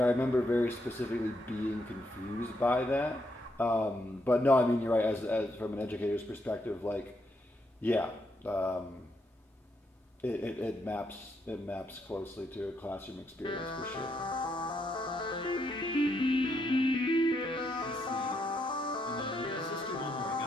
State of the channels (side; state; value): both; normal; correlation 0.77